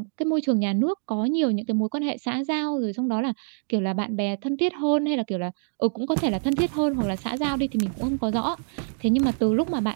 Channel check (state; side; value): silent; left; 58 dB below the other